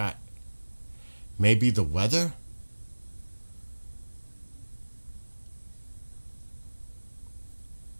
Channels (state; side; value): inverted; both; correlation -1.00